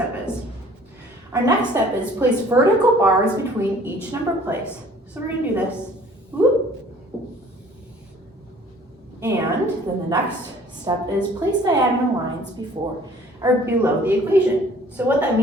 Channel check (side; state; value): both; normal; correlation 0.53